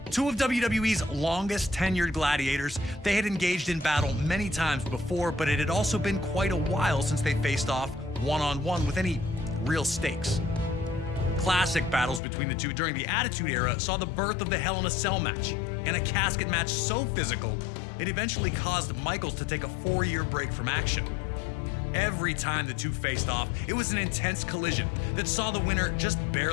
Two of WWE's longest tenured gladiators, they had engaged in battle many times before, but it had also been quite a while since they faced off one-on-one with any real stakes. Classic battles between the two during the Attitude Era saw the birth of the Hell in a Cell match, and a casket match so physical, it eventually caused Michaels to take a 4-year break from action. Every time the two faced off, it was an intense collision that saw the winner just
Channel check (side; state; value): right; drops out; at 12.2 s